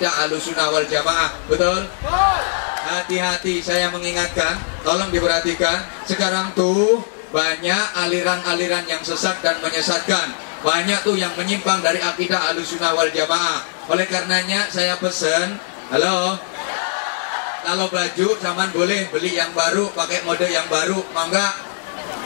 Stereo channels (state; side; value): silent; right; 66 dB below the other